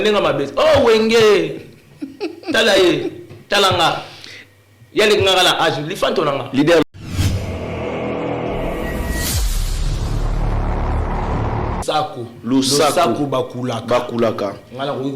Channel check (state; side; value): identical; both; correlation 1.00